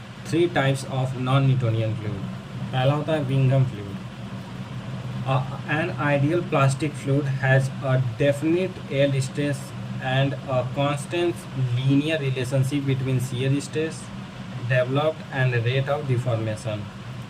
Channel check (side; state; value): both; identical; correlation 1.00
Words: 3 types of non Newtonian fluid. पहला होता है विंगम fluid. An ideal plastic fluid has a definite yield stress and a constant linear relationship between shear stress developed and rate of deformation.